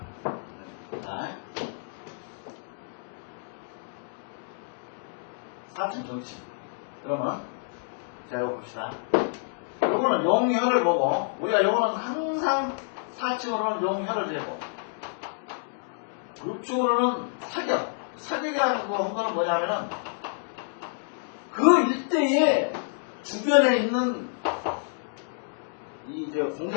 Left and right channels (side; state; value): right; silent; digital silence